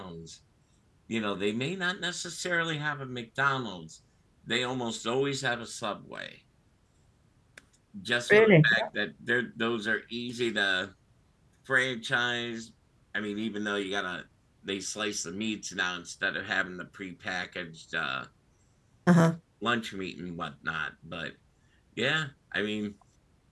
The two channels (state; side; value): identical; both; correlation 1.00